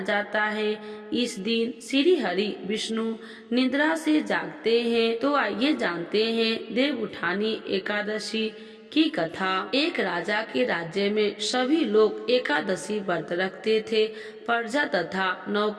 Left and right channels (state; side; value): identical; both; correlation 1.00